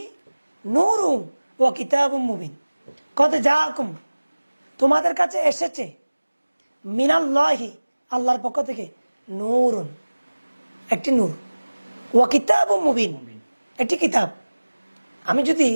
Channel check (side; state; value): both; inverted; correlation -1.00